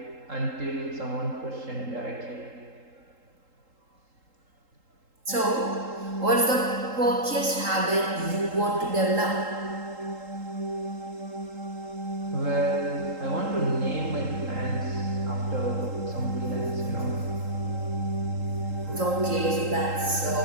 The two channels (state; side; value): late; left; 3.8 ms